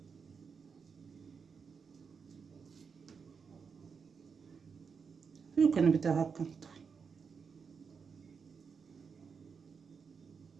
وكنبدا هكا نطوي.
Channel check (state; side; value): quieter; left; 5.9 dB